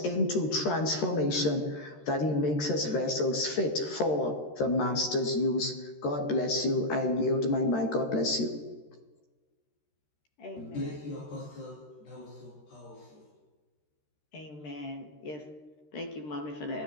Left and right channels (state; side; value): late; right; 13 ms